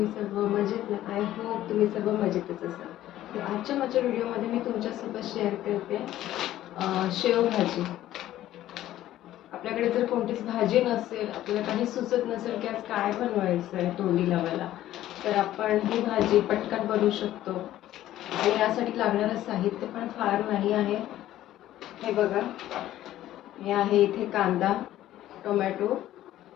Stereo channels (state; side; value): quieter; right; 13.6 dB